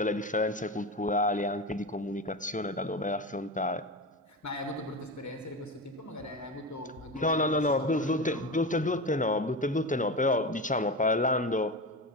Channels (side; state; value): both; normal; correlation 0.23